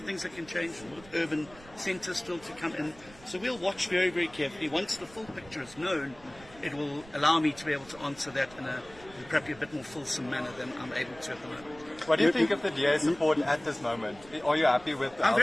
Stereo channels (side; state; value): right; noise; rumble, 22 dB below the sound